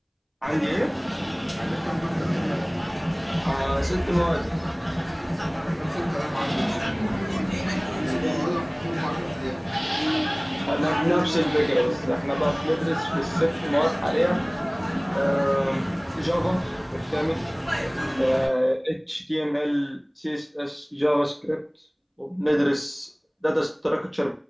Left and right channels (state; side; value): identical; both; correlation 1.00